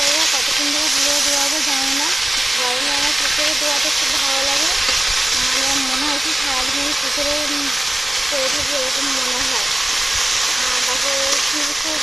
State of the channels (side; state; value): both; normal; correlation 0.97